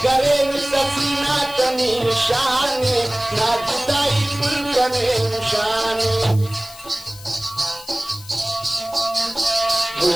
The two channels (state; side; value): noise; left; hiss, 18 dB below the sound